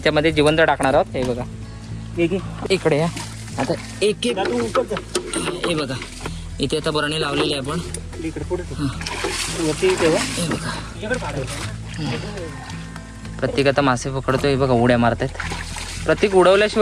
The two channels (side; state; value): both; identical; correlation 1.00